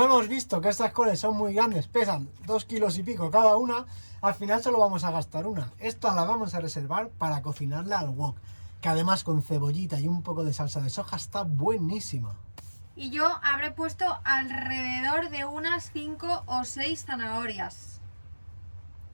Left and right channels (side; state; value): both; inverted; correlation -1.00